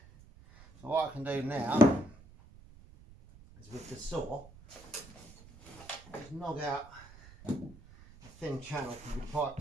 So what I can do now is with the saw, just knock out a thin channel for the pipe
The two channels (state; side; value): noise; right; rumble, 21 dB below the sound